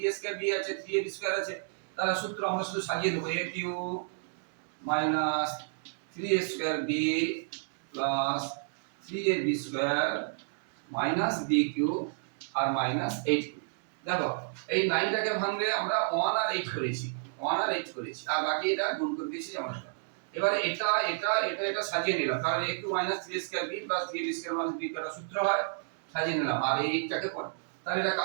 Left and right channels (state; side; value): silent; left; digital silence